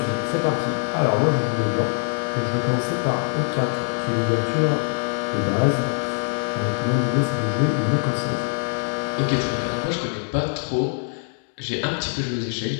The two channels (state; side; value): silent; right; digital silence